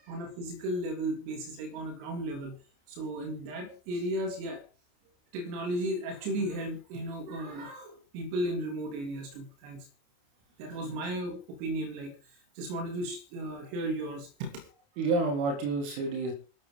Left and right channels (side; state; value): left; late; 28 ms